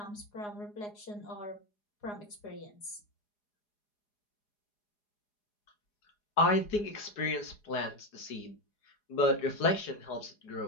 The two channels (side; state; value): right; late; 4.8 ms